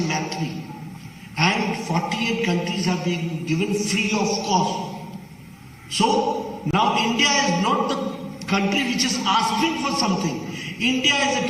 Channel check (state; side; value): identical; both; correlation 1.00